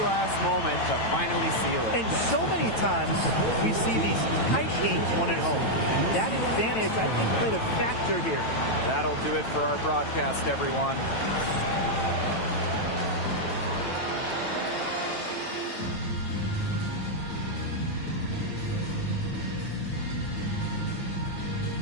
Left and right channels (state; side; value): late; right; 9.1 ms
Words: last moment to finally seal it. And so many times we see these tight games won at home. That advantage, I think, played a factor here. That'll do it for our broadcast, everyone.